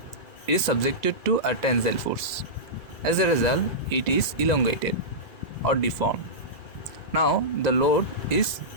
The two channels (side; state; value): right; late; 1.9 ms